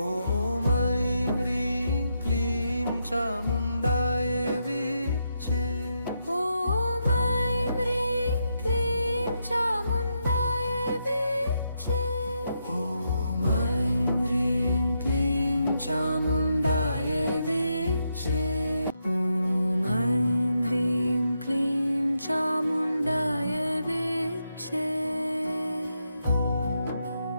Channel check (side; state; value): both; inverted; correlation -0.82